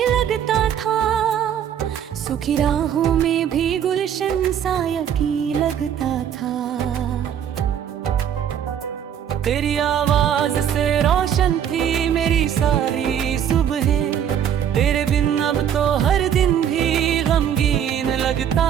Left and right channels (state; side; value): quieter; left; 9.2 dB